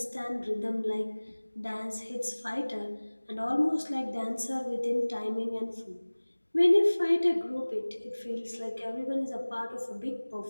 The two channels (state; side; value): inverted; both; correlation -1.00